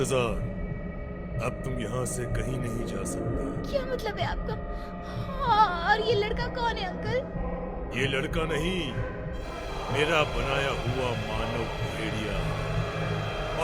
अब तुम यहाँ से कहीं नहीं जा सकते। क्या मतलब है आपका? हाँ, और ये लड़का कौन है अंकल? ये लड़का नहीं, मेरा बनाया हुआ मानव भेड़िया।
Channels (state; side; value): identical; both; correlation 1.00